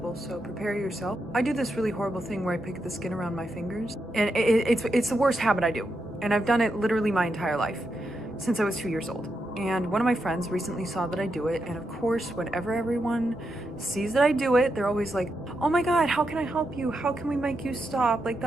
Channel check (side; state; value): both; normal; correlation 0.84